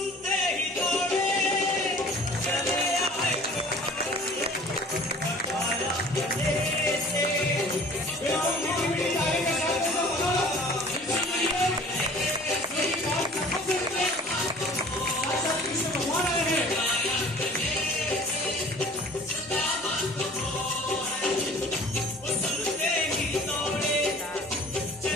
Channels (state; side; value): normal; both; correlation 0.48